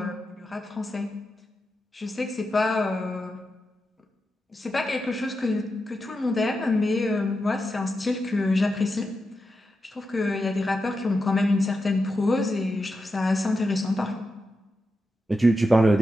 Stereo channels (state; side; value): normal; both; correlation 0.88